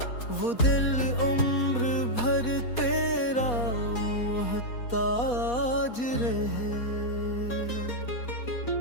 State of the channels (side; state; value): right; late; 4.2 ms